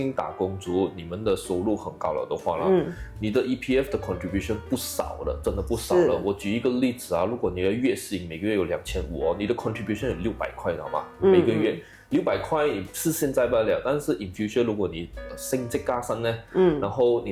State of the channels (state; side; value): identical; both; correlation 1.00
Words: 打工族你们的收入很高了的话啦，你的 EPF 的 contribution 不少了，真的不少了。我举一个例子啊，如果你的月薪每个月有2500你的 contribution 有600块，知道吗？每个月600块你是现在不了，但是 in future 如果你升职加薪呢，然后